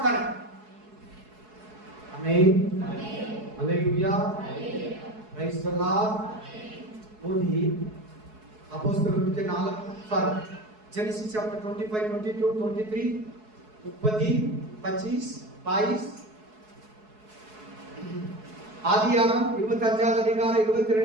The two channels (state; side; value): late; left; 4.7 ms